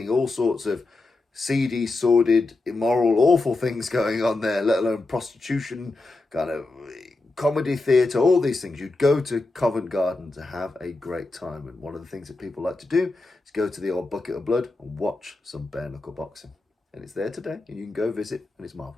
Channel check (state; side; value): quieter; right; 3.2 dB